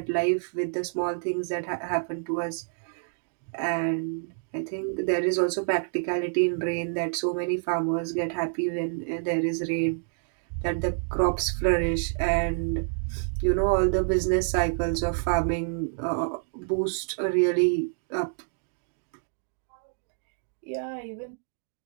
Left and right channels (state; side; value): silent; left; digital silence